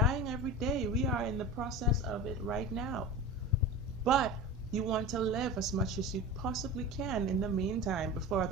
every day. We are in the process of it right now. But you want to live as much as you possibly can in the meantime before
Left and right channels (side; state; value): both; normal; correlation 0.30